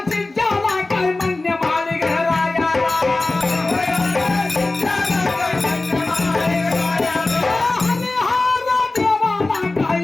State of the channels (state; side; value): quieter; right; 3.1 dB